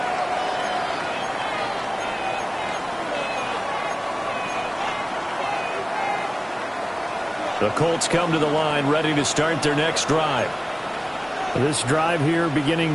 The Colts come to the line ready to start their next drive. This drive here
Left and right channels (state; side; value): identical; both; correlation 1.00